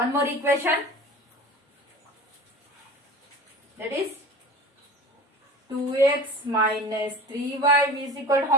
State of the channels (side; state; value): both; normal; correlation 0.37